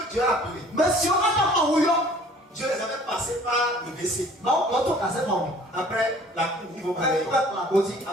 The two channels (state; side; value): normal; both; correlation 0.52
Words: Dieu a appelé, Dieu les avait passés par le WC. Après la cour, ils vont parler.